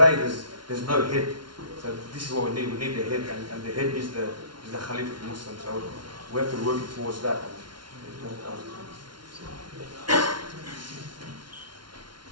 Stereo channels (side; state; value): left; late; 0.72 ms